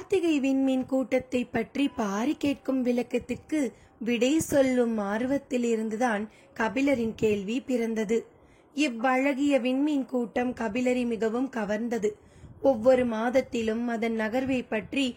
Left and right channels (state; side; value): identical; both; correlation 1.00